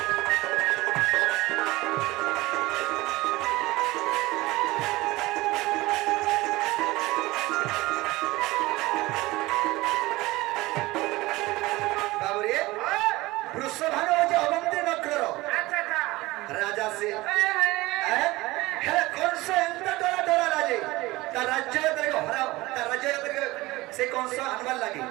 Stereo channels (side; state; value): left; quieter; 20.0 dB